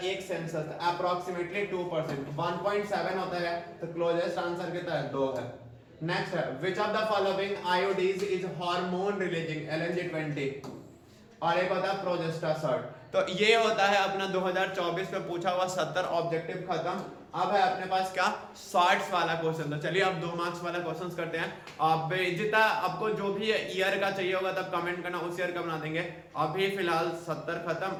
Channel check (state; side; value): identical; both; correlation 1.00